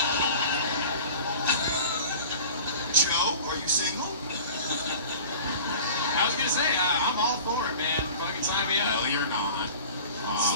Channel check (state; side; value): inverted; both; correlation -0.40